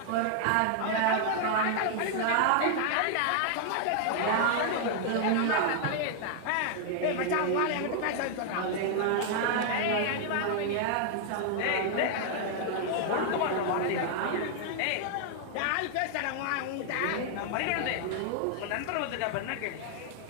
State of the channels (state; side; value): different; both; correlation 0.00